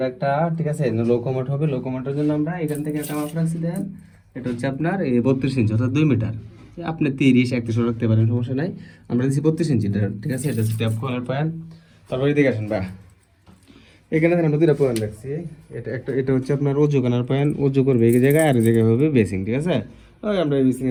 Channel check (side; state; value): both; identical; correlation 1.00